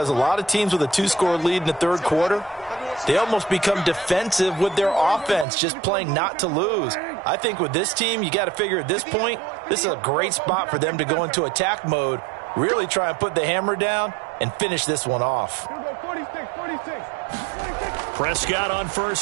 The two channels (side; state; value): left; drops out; at 5.5 s